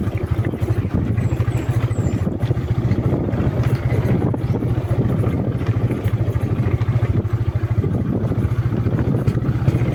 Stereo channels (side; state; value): both; identical; correlation 1.00